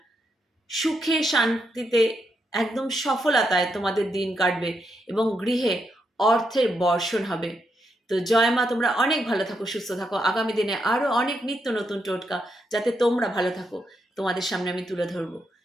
সুখে শান্তিতে একদম সফলতায় তোমাদের দিন কাটবে এবং গৃহে অর্থের বর্ষণ হবে। তো জয় মা, তোমরা অনেক ভালো থাকো, সুস্থ থাকো। আগামী দিনে আরো অনেক নিত্য নতুন টোটকা যাতে তোমরা ভালো থাকো তোমাদের সামনে আমি তুলে ধরবো।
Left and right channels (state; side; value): normal; both; correlation 0.81